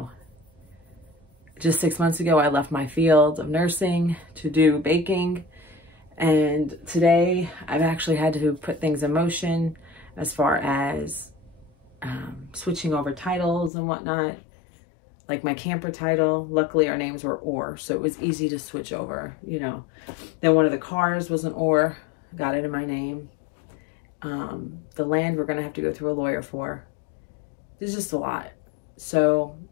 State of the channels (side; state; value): right; drops out; at 13.7 s